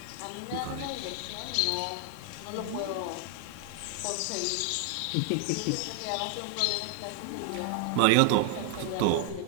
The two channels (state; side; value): different; both; correlation 0.00